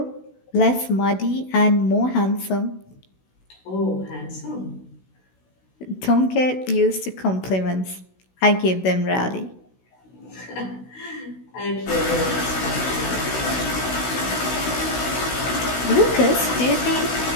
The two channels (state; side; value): late; right; 16 ms